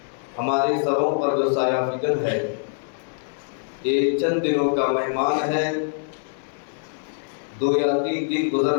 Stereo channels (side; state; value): right; silent; digital silence